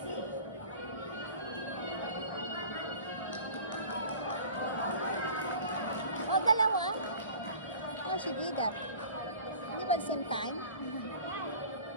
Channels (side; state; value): both; inverted; correlation -0.43